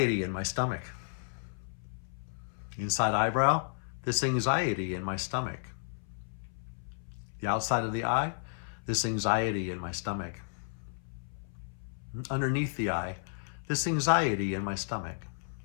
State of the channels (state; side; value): silent; right; 56 dB below the other